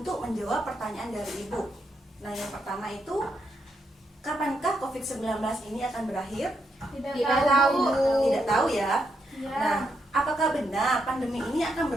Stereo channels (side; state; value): both; normal; correlation 0.80